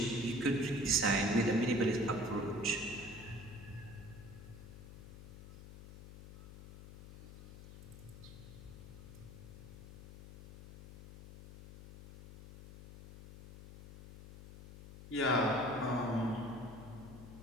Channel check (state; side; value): noise; left; hum, 15 dB below the sound